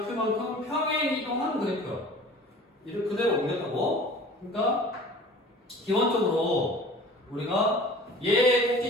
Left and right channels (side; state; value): both; normal; correlation 0.44